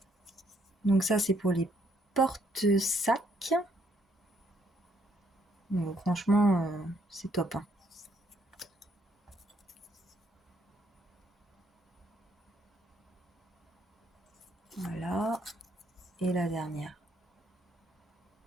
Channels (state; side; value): normal; both; correlation 0.70